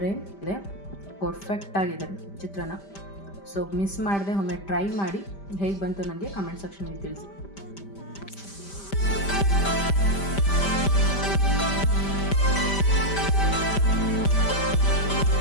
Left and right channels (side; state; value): right; late; 5.1 ms